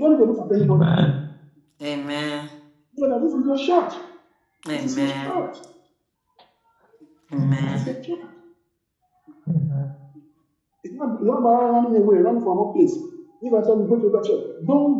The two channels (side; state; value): both; identical; correlation 1.00